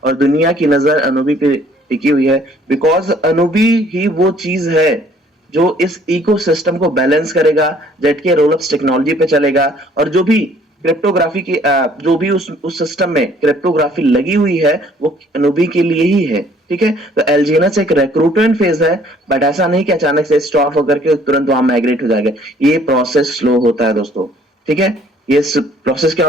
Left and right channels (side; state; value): both; normal; correlation 0.59